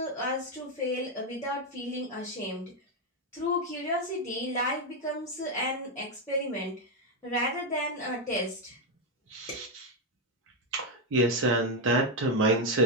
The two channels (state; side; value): normal; both; correlation 0.05